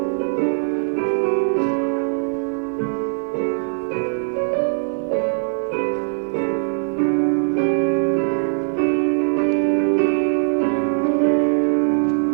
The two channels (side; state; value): left; silent; 65 dB below the other